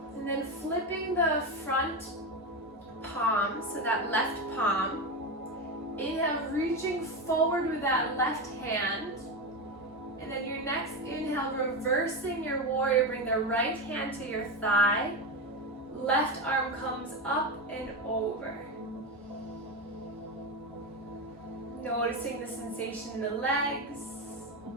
And then flipping the front palm, so that left palm. Inhale, reaching forward with that left hand. And then your next inhale, reversing your warrior, bring the right hand to your thigh. Left arm comes up and over. Noticing the sensation in the legs.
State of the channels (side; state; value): both; normal; correlation 0.15